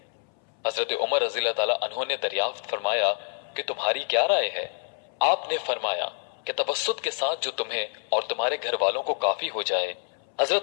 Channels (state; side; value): silent; right; 60 dB below the other